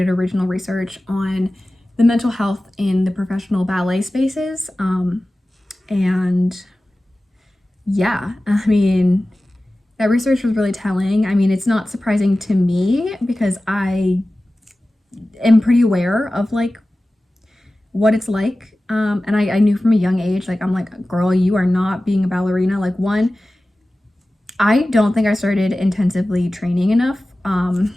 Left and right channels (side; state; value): both; normal; correlation 0.96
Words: original research on the mental health in the professional ballet spaces. And yeah, I mean, that research was really telling. I mean, it's not surprising to me because I am pretty aware of like what it's like. And I knew from a young age, like, I'm like, girl, you are not being a ballerina. Like, one, I don't think I started intensively training enough,